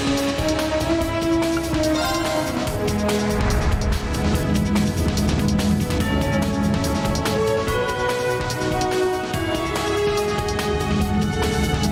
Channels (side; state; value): both; identical; correlation 1.00